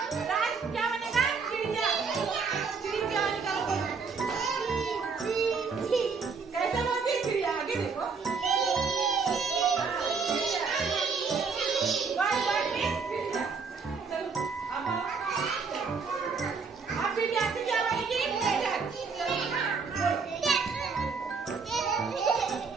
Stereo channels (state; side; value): quieter; left; 5.1 dB